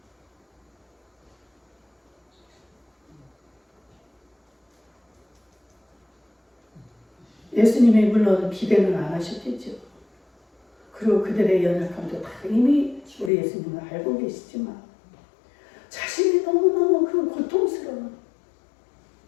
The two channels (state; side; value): drops out; right; at 13.3 s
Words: 예수님이 물론 기대는 안 하셨겠죠. 그리고 그들의 연약함도 다 이미 우리 예수님은 알고 계시지만 자신이 너무너무 그 고통스러운